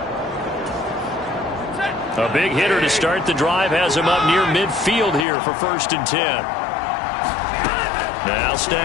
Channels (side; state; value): right; drops out; at 5.2 s